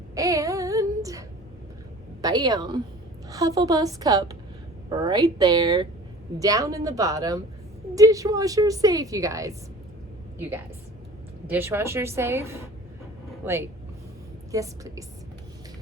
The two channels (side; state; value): both; normal; correlation 0.44